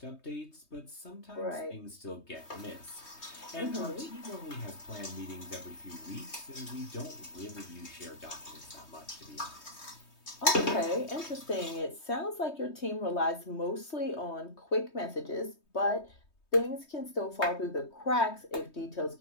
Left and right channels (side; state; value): right; late; 3.2 ms